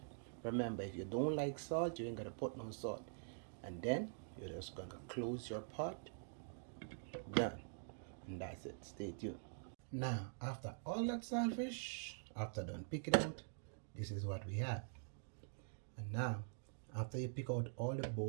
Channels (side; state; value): left; silent; digital silence